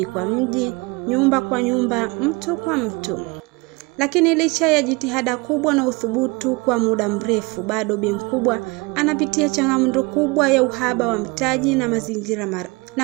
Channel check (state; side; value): quieter; left; 26.3 dB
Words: kwa mji, nyumba kwa nyumba, mtu kwa mtu. Lakini licha ya jitihada kubwa na uthubutu kwa muda mrefu, bado Bi Mkubwa anapitia changamoto kubwa ya uhaba wa mtaji